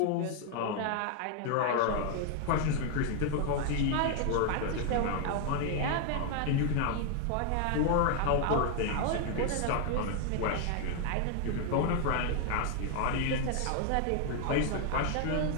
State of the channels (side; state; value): both; different; correlation 0.00